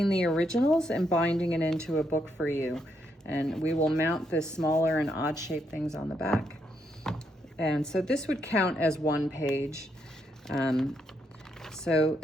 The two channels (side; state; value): both; normal; correlation 0.77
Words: the originals and binding it into a book for you, and we will mount the smaller and odd shaped things on the back. And so this would count as one page. So